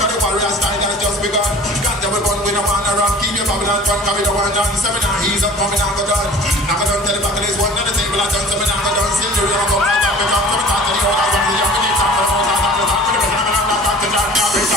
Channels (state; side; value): normal; both; correlation 0.45